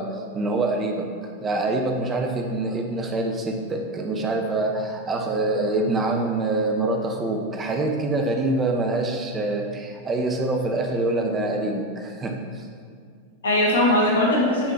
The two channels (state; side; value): normal; both; correlation 0.16